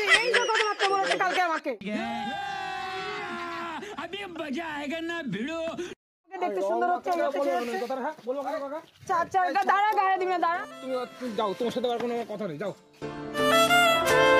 এই যে কথাবার্তা বলেছে কালকে আমাকে। দেখতে সুন্দর হচ্ছে, দাঁড়া গায়ে দিবি না, দাঁড়া। তুমি যাও, তোমার সাথে আর কোনো কথা নেই, যাও।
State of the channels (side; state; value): both; identical; correlation 1.00